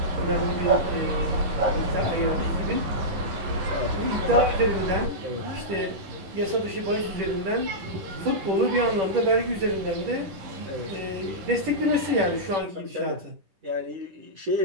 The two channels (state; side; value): late; left; 10 ms